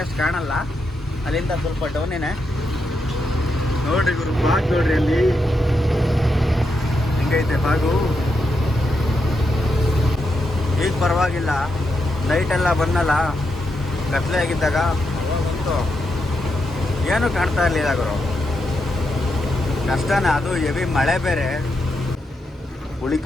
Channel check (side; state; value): both; normal; correlation 0.83